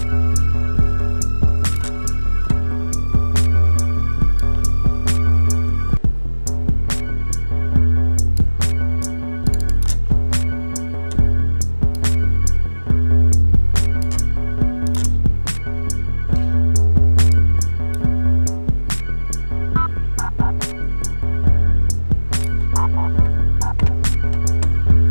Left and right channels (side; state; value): both; inverted; correlation -1.00